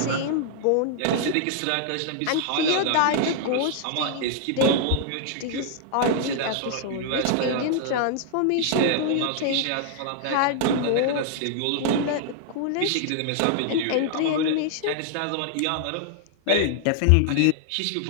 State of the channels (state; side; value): different; both; correlation -0.01